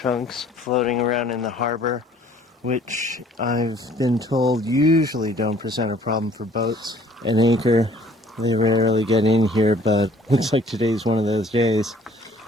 floating around in the harbor, which I've been told usually don't present a problem for boats. An anchor, they rarely get in here, but looks like today's one of those days.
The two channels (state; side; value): normal; both; correlation 0.56